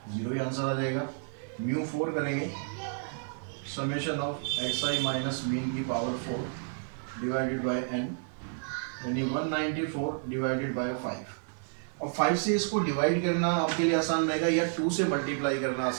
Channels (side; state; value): left; silent; 57 dB below the other